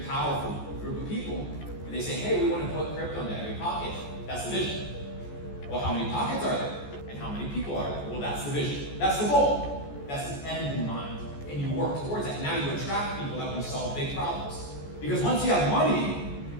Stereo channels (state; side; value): late; right; 14 ms